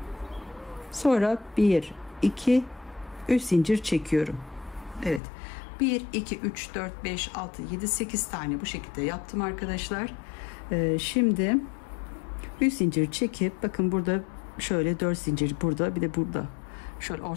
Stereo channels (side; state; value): right; drops out; at 5.2 s